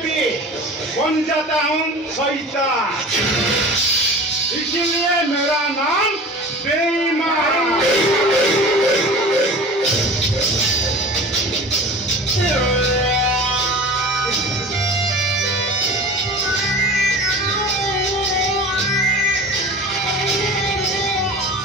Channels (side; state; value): both; normal; correlation 0.38